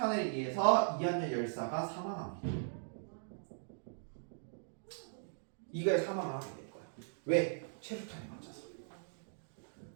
의해서 이한열 열사가 사망합니다. 이거에 사망을 하게 될 거야. 왜? 최루탄에 맞아서.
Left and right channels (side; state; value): left; silent; digital silence